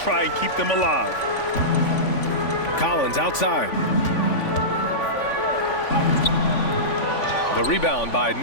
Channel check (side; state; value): right; late; 3.5 ms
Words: and keep them alive. Collins outside. The rebound by